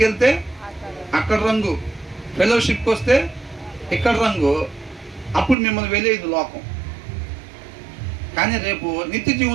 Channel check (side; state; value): left; drops out; at 5.6 s